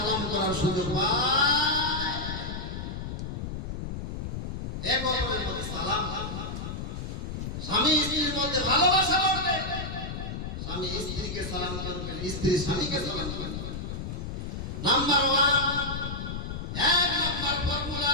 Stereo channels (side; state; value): left; noise; rumble, 6 dB below the sound